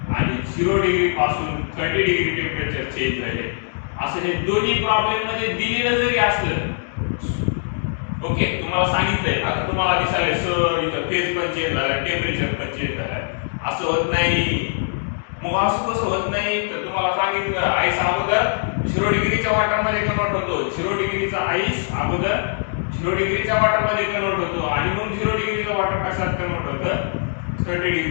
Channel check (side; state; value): right; silent; digital silence